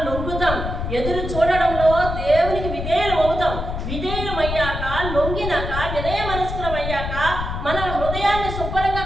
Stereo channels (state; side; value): noise; left; rumble, 5 dB below the sound